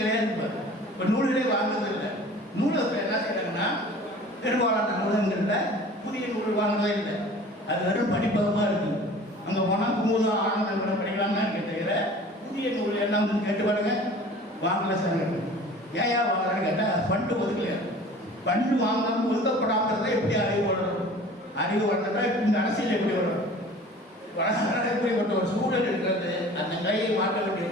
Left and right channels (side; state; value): both; normal; correlation 0.44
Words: இருப்பார். இப்போ நூல்களே வாங்குறது இல்லை. நூலகத்தில் என்ன செய்யறாங்கன்னா பெரும்பாலான நூலகங்களில் புதிய நூல் வாங்குறதே இல்லை. அது வெறும் படிப்பகமாக இருக்குது. அங்கே போனால் குமுதம் ஆனந்தம் கூட படிக்கலாம்னா தவிர புதிய நூல் என்ன வந்து கேட்டு பாருங்க, வாங்கல சார். ஏன் வாங்கலான்னு கேட்டால் ஃபண்டு ஒதுக்கலையா. ஃபண்டு வாங்காமல் ஒதுக்கப்படாமல் எப்படி அறிவு வளரும்? அறிவு வளர்ந்தா இந்த அரசியல் எப்படி வரும்? இப்படிப்பட்ட ஒரு சூழல் இருக்கிறது. அந்த கையை மாற்ற வேண்டிய